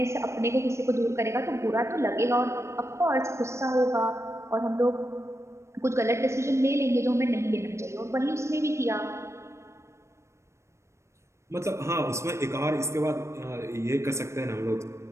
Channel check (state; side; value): late; left; 0.13 ms